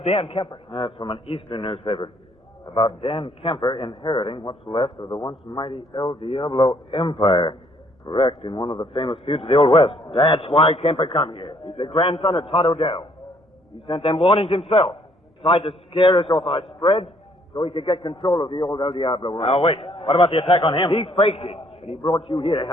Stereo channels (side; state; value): both; normal; correlation 0.65